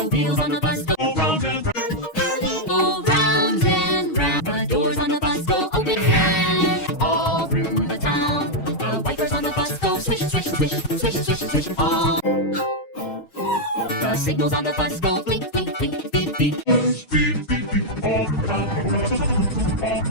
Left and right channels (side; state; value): right; late; 6.3 ms